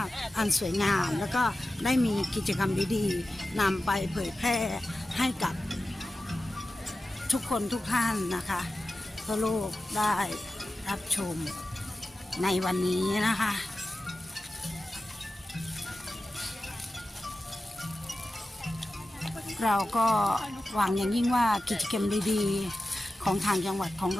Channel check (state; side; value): normal; both; correlation 0.94